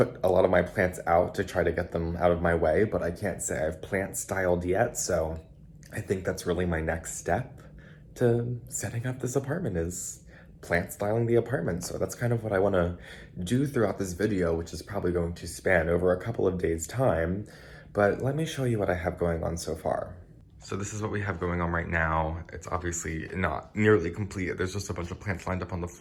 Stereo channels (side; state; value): both; identical; correlation 1.00